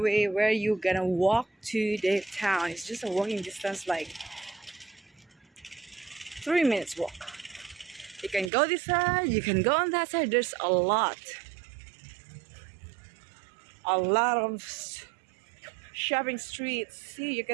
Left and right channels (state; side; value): drops out; left; at 8.5 s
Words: where you gonna walk to the town. It's just a walking distance, like 3 minutes walk. You can go this side, you can go on that side. There's a lot of shopping streets. See, you